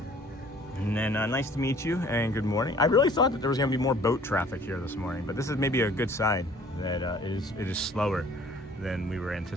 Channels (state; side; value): normal; both; correlation 0.53